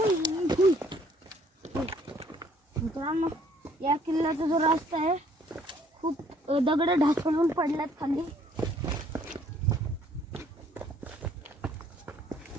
मित्रांनो या किल्ल्याचा जो रस्ता आहे खूप दगड ढासळून पडल्यात खाली.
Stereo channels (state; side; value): normal; both; correlation 0.62